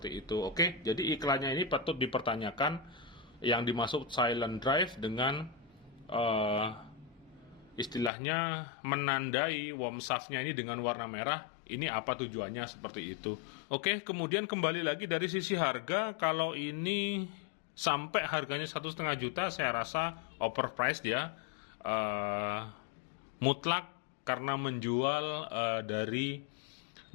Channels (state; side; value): drops out; right; at 8.1 s